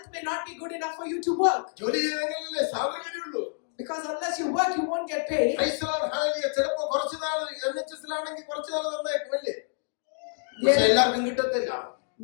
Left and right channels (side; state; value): right; silent; digital silence